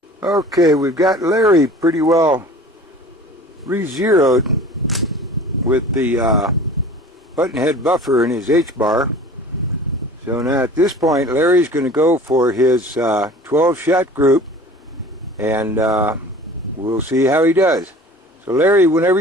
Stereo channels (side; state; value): both; normal; correlation 0.43